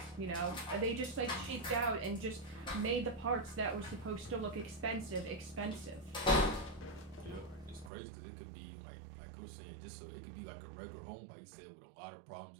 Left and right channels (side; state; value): left; drops out; at 7.9 s